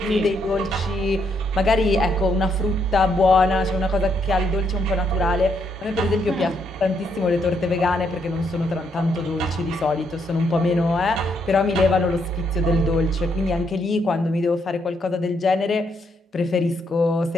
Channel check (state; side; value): normal; both; correlation 0.75